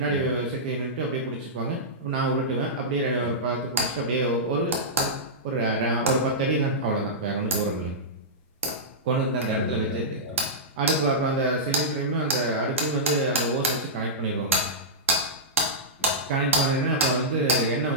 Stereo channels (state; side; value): normal; both; correlation -0.14